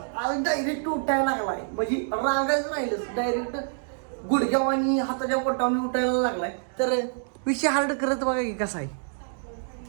आज डायरेक्ट उठायला लागलाय. म्हणजे रांगायचं राहिलंच, डायरेक्ट गुडघ्याव आणि हाताच्या पोटावर उठायला लागलाय. तर विषय हार्ड करत बघा की कसा आहे.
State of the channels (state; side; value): silent; left; digital silence